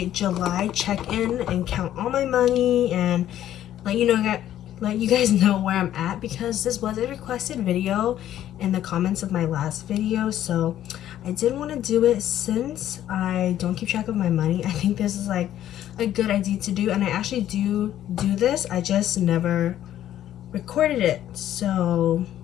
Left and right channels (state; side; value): quieter; right; 11.9 dB